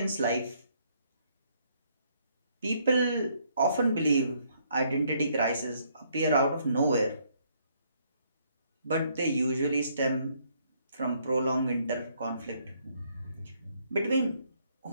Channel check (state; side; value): inverted; both; correlation -0.69